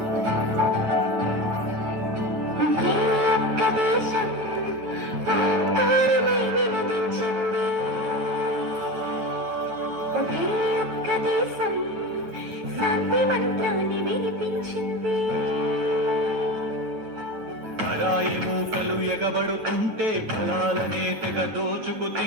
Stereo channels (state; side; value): late; left; 9.2 ms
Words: దేశం శాంతి మంత్రాన్ని వినిపించింది. పరాయి మూకలు ఎగబడుతుంటే ఫలాలనే తెగ దోచుకు